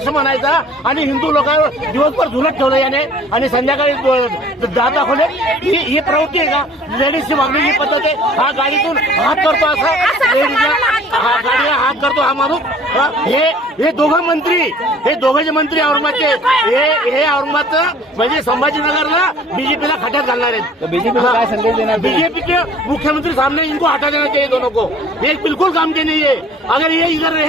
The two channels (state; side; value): normal; both; correlation 0.51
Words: म्हणायचा आणि हिंदू लोकांवर दिवसभर झुलत ठेवलं याने आणि संध्याकाळी जात दाखवले. ही प्रवृत्ती आहे का? लेडीजची वागण्याची पद्धत आहे. हा गाडीतून हात करतो असा लेडीजला गाडीला हात करतो हा माणूस. हे दोघं मंत्री, हे दोघे मंत्री औरंगाबादचे, हे औरंगाबादचं म्हणजे संभाजीनगरला बीजेपीला खड्यात घालणार आहेत. बीजेपीला काय संदेश देणार? बीजेपी के मुख्यमंत्री सामने इनको हटा देना चाहिए दोनों को. ये बिल्कुल काम के नहीं है. अगर ये इधर